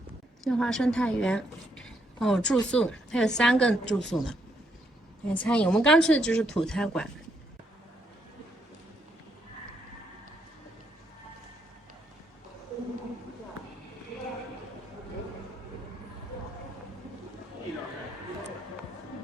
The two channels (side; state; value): both; normal; correlation 0.75